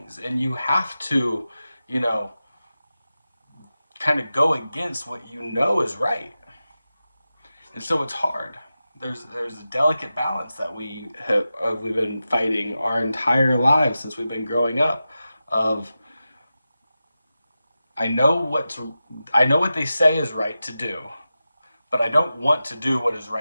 and you have to, you know, kind of go against what you know is right. And so it's hard. There's a delicate balance that we've been fighting our entire lives since we've been growing up. Of I know what they say is right to do, but I don't want to do what is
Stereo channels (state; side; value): inverted; both; correlation -0.93